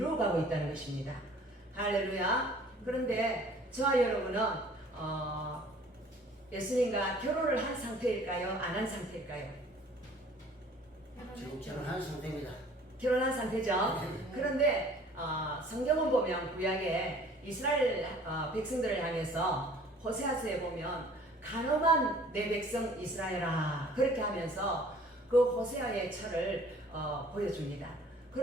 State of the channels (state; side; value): normal; both; correlation 0.52